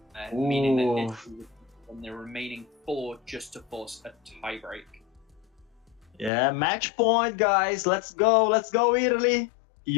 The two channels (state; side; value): drops out; right; at 6.3 s